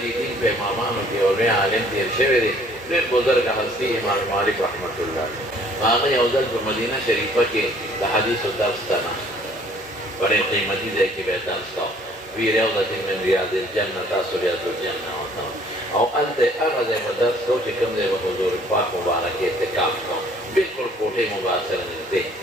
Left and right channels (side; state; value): both; normal; correlation 0.58